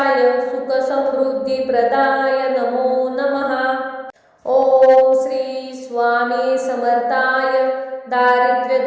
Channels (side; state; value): both; identical; correlation 1.00